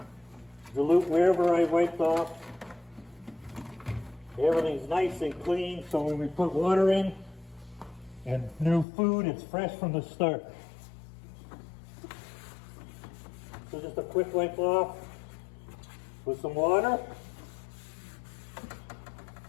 dilute wherever I wiped off. Everything's nice and clean, so when we put water in and new food, it's fresh from the start. So just a quick wipe off with some water.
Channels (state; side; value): drops out; right; at 8.8 s